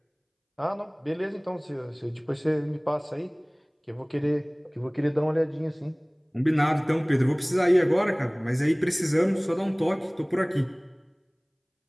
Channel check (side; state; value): both; identical; correlation 1.00